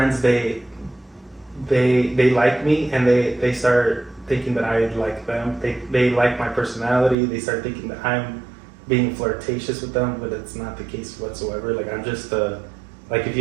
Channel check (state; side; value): drops out; left; at 7.2 s